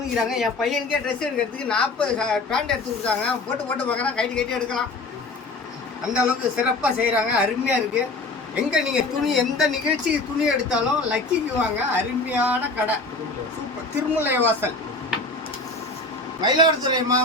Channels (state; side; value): quieter; right; 3.3 dB